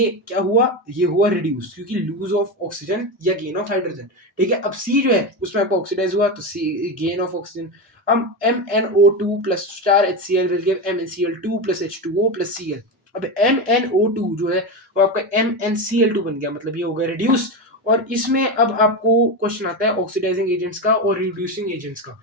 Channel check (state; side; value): normal; both; correlation 0.17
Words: क्या हुआ, ये हुआ रिड्यूस, क्योंकि लूज ऑफ ऑक्सीजन या गेन ऑफ हाइड्रोजन, ठीक है। अब C जो है उसमें आपको ऑक्सीडाइज हुआ, तो C गेन ऑफ ऑक्सीजन। अब MnO2 plus star HCl will give MnCl2 plus H2O plus Cl। अब MnO2 जो है वो आपका MnCl2 बन गया, मतलब ये हो गया रिड्यूस। और इसमें अब आपको क्वेश्चन आता है ऑक्सीडाइजिंग एजेंट्स का और रिड्यूसिंग एजेंट्स का।